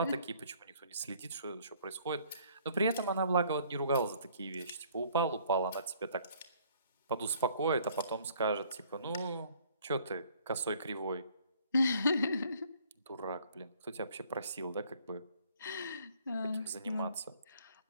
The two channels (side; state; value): both; inverted; correlation -0.59